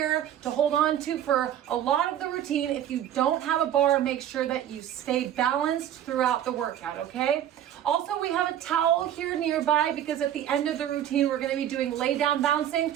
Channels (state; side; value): quieter; left; 10.9 dB